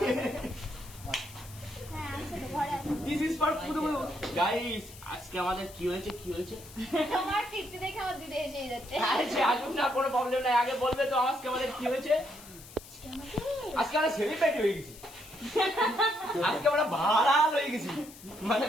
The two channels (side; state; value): left; noise; hiss, 18 dB below the sound